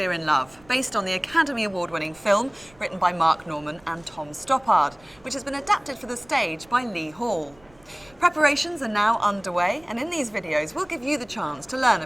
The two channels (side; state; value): right; noise; rumble, 28 dB below the sound